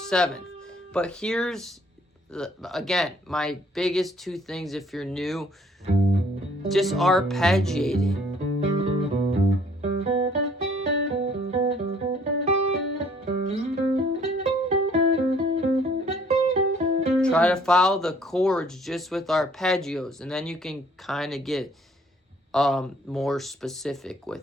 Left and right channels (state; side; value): normal; both; correlation 0.60